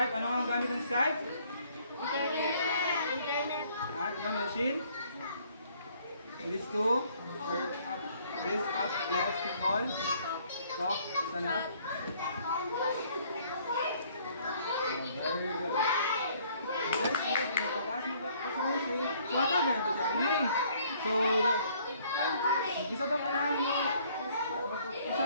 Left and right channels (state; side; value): inverted; both; correlation -0.61